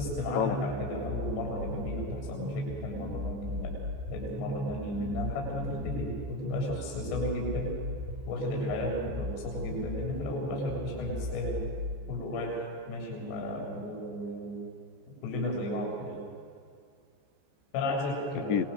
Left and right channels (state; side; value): late; right; 14 ms